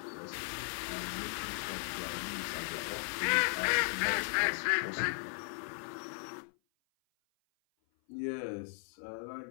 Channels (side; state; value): right; silent; 53 dB below the other